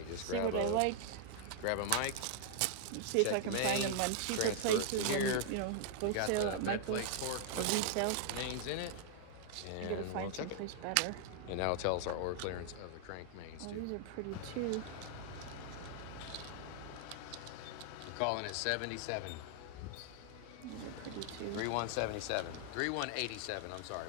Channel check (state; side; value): different; both; correlation -0.01